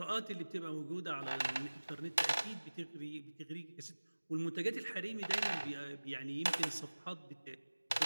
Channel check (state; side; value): inverted; both; correlation -1.00